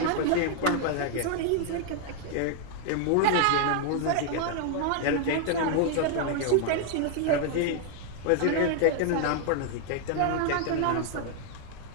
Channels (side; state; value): both; different; correlation 0.00